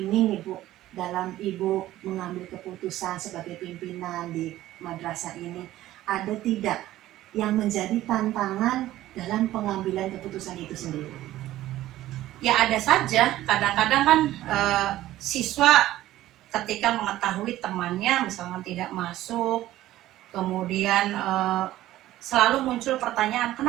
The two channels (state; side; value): quieter; left; 14.8 dB